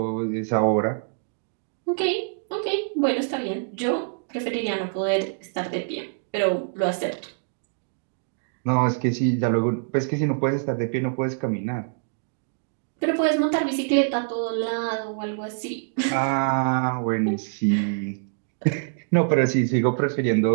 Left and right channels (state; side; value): silent; left; digital silence